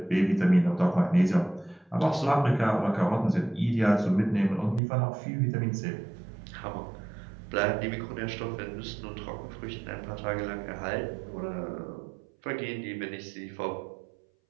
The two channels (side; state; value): left; drops out; at 4.8 s